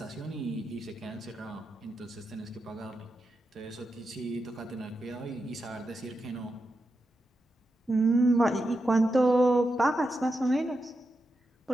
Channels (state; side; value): normal; both; correlation 0.88